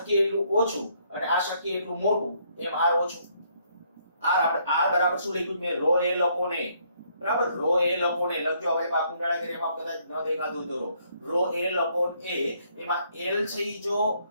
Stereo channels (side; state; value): both; inverted; correlation -0.69